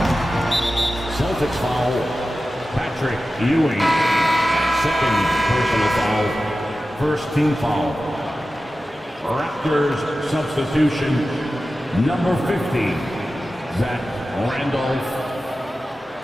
Celtics foul. Patrick Ewing. Second personal foul. First team foul. Raptors substitution. Number 50. Zach Randolph.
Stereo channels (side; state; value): both; normal; correlation 0.94